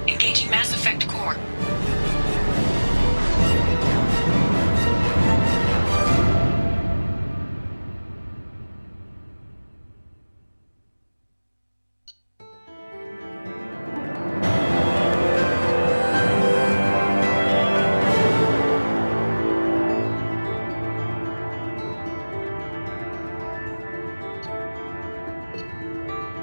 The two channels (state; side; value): inverted; both; correlation -1.00